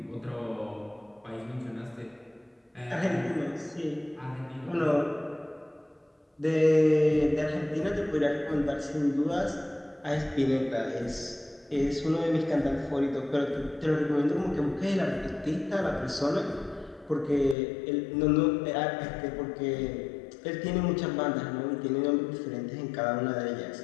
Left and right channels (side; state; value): right; drops out; at 17.6 s